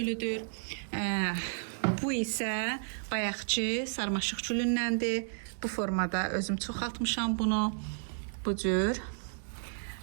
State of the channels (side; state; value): left; silent; digital silence